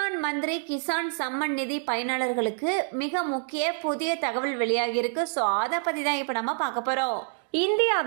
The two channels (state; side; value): silent; left; 60 dB below the other